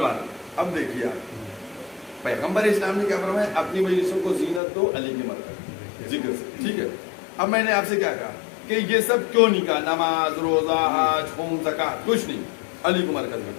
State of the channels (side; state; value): right; drops out; at 4.6 s